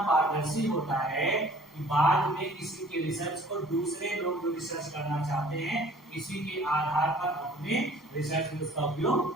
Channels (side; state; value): both; normal; correlation 0.52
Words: पारदर्शी होता है कि बाद में किसी के रिसर्च को दूसरे लोग जो रिसर्च करना चाहते हैं इसी के आधार पर अपने रिसर्च में उसका उपयोग